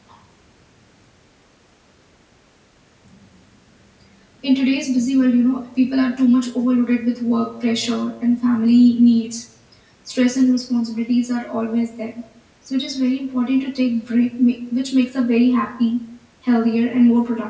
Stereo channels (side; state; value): both; identical; correlation 1.00